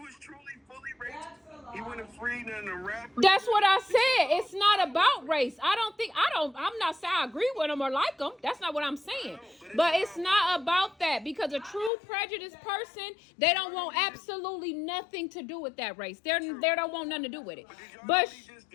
truly fully racist. He wouldn't have freed none of the rappers. That's what I said. It's not about race. I'm not saying I agree with them or like them. That's not what I'm saying. But it's not about that, because a true prejudiced person, they don't want absolutely nothing to do with that race. They don't want nothing to do with it. But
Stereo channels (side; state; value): right; drops out; at 11.9 s